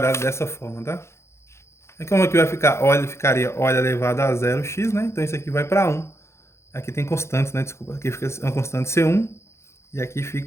dessa forma, tá? E como aqui vai ficar, ficaria O elevado a 0x, né? Então isso aqui vai para 1. Aqui tem constantes, né? Desculpa. Aqui fica uma constante C1 e aqui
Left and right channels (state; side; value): late; right; 0.13 ms